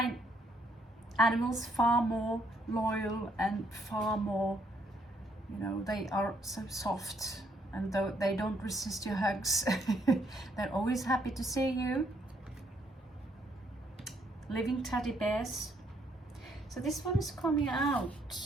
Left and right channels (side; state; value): both; normal; correlation 0.70